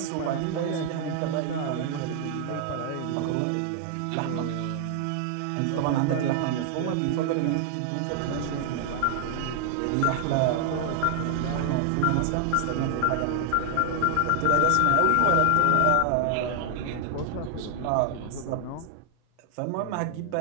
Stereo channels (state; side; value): different; both; correlation 0.00